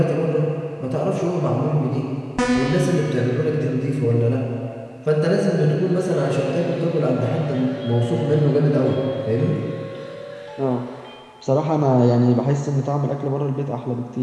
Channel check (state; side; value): identical; both; correlation 1.00